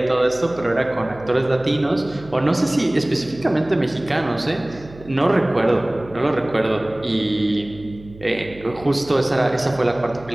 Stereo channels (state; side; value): noise; right; hum, 19 dB below the sound